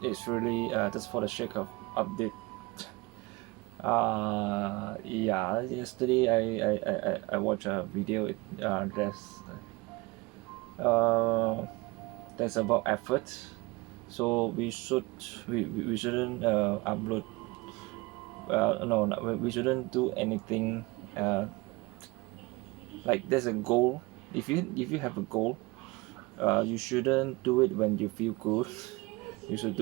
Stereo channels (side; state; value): left; quieter; 23.6 dB